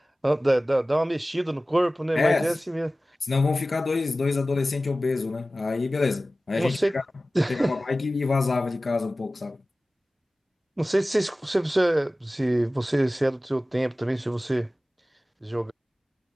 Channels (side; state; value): both; normal; correlation 0.96